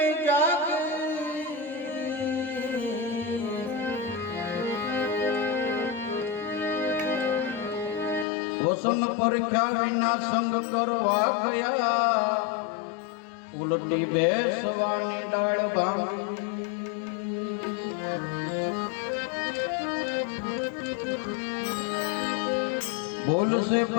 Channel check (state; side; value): drops out; right; at 8.2 s